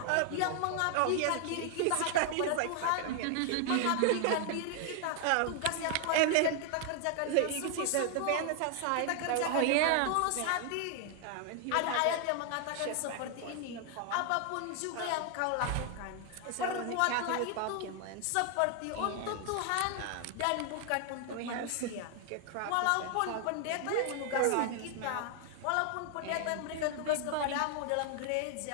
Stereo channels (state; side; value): different; both; correlation 0.00